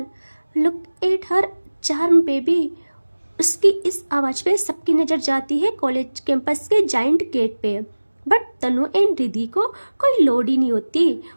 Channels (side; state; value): both; inverted; correlation -1.00